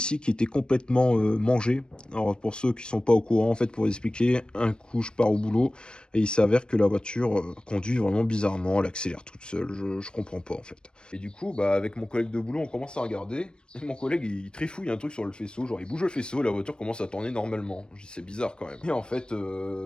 qui étaient complètement mangés. Alors pour ceux qui sont pas au courant, en fait, pour expliquer, un coup je pars au boulot et il s'avère que la voiture conduit vraiment bizarrement, elle accélère toute seule, je comprends pas en fait. Et du coup, bah avec mon collègue de boulot, on commence à regarder, et mon collègue il trifouille un truc sur le faisceau, genre il bouge le faisceau, la voiture commence à tourner normalement. Je dis c'est bizarre quand même. Et en fait,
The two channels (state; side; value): late; right; 0.052 ms